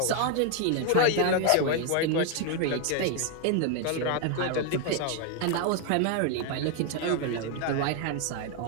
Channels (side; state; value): both; different; correlation 0.01